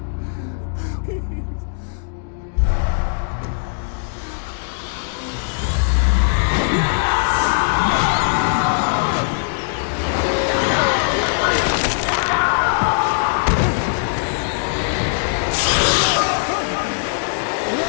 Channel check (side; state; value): right; silent; digital silence